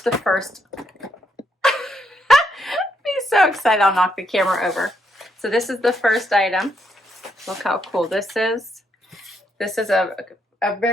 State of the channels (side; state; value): both; normal; correlation 0.77